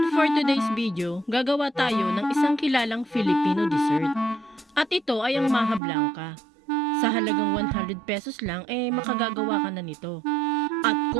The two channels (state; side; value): drops out; left; at 5.8 s